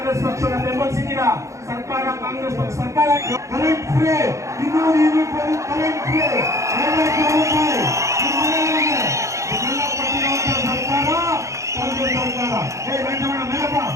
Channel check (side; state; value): left; late; 0.15 ms